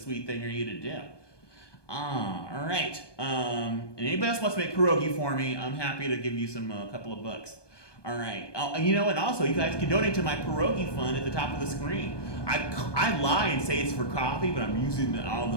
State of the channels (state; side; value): late; right; 1.2 ms